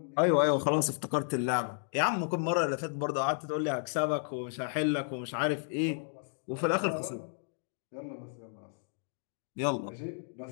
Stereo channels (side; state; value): right; silent; digital silence